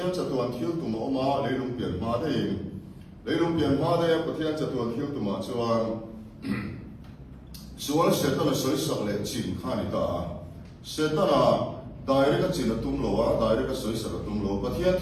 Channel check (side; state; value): both; identical; correlation 1.00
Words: cha tu an thil tu ma ma leilung pian ma de pathian cha tu an thil tu ma chuan sual se ta na soi sak le chin kha ni ta se ta na dai ka chin tum lo wa dai ka soi sak tum lo pathian